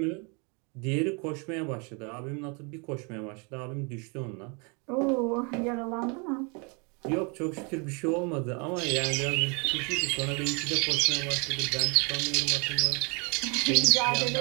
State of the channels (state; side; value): quieter; left; 33.2 dB